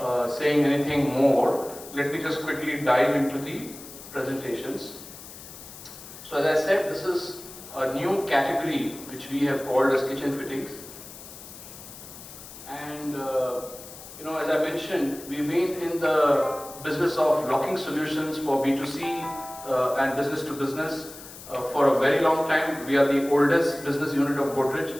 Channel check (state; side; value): noise; left; hiss, 15 dB below the sound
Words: saying anything more, let me just quickly dive into the presentations. So as I said, this is a new category which we have called as kitchen fittings. And as I mentioned, we've been in the business of locking solutions for B2C and business to business for a very long time. We are the oldest business unit of